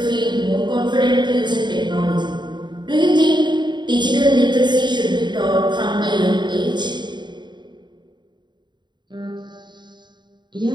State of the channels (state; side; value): late; left; 0.22 ms